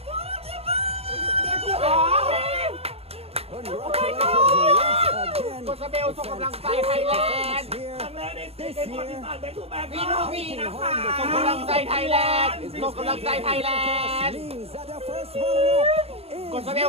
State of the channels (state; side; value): late; left; 0.29 ms